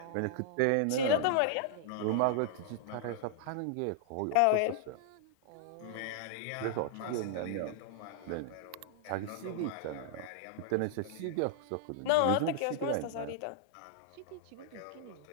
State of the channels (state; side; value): different; both; correlation -0.01